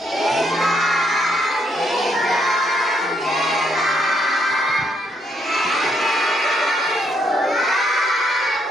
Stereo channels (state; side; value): normal; both; correlation 0.74